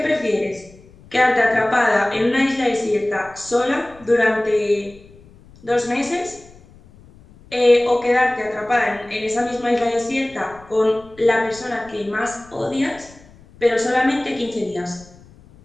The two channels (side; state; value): left; noise; rumble, 24 dB below the sound